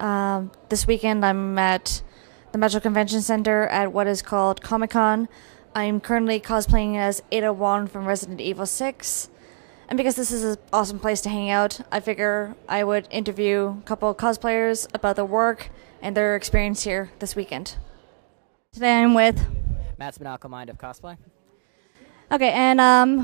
this weekend I'm at the Metro Convention Center at what is called ComiCon. I'm currently cosplaying as Ada Wong from Resident Evil 6, and because this is an awesome place to hang out, I figure I would interview a couple of cosplayers about their work and their experience here this weekend. Today I'm with Matt's MandaCowled of Cosplay. Okay, and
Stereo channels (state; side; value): silent; left; digital silence